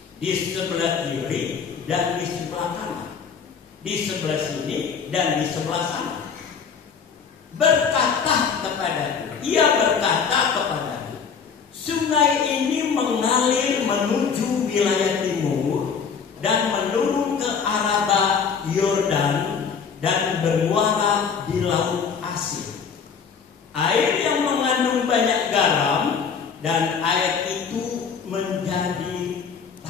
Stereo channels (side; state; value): right; quieter; 6.3 dB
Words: di sebelah kiri dan di sebelah kanan, di sebelah sini dan di sebelah sana. Ia berkata kepadaku, sungai ini mengalir menuju wilayah timur dan menurun ke Araba Yordan dan bermuara di Laut Asin. Air yang mengandung banyak garam, dan air itu menjadi